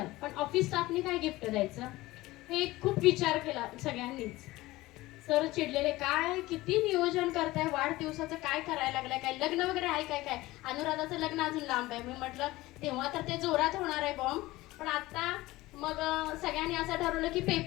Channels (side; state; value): right; quieter; 18.7 dB